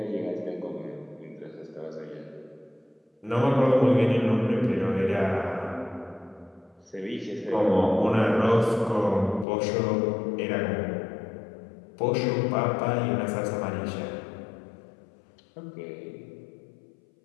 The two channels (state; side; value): drops out; right; at 9.5 s